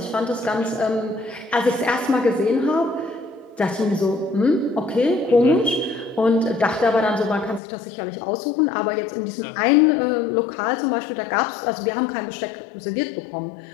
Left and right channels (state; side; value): drops out; right; at 7.6 s